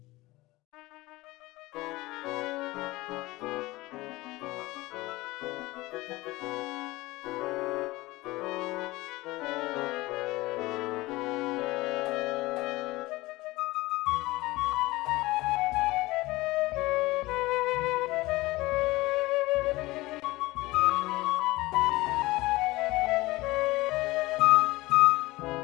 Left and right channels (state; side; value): quieter; right; 20.0 dB